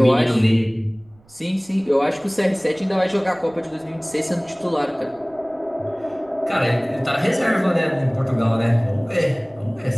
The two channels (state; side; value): noise; right; rumble, 30 dB below the sound